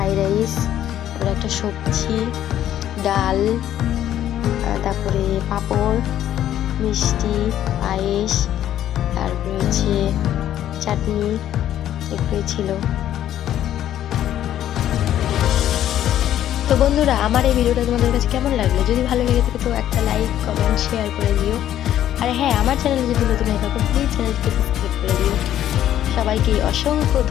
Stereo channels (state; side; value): quieter; right; 11.6 dB